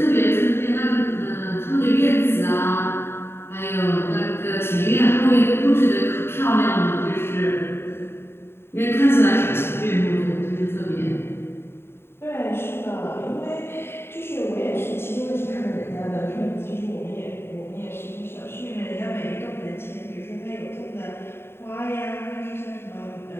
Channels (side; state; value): right; late; 0.11 ms